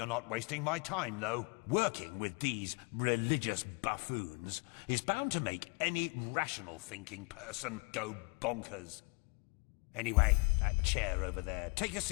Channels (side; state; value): right; quieter; 31.8 dB